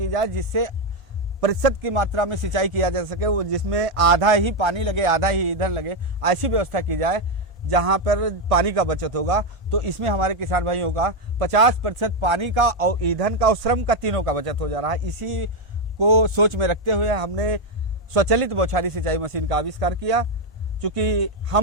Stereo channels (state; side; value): normal; both; correlation 0.04